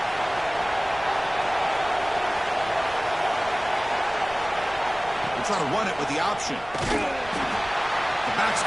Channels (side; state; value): right; noise; rumble, 19 dB below the sound